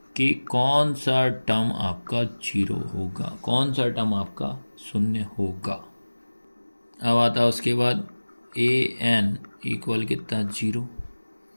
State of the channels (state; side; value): inverted; both; correlation -1.00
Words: कि कौन सा टर्म आपका 0 होगा, कौन सा टर्म आपका 0 होगा। अब आता है उसके बाद ए एन इक्वल कितना 0।